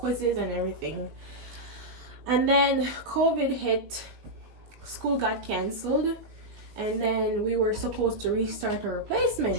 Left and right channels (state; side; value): late; left; 20 ms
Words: and everything. And then COVID hit, school got canceled, and then we were supposed to restart our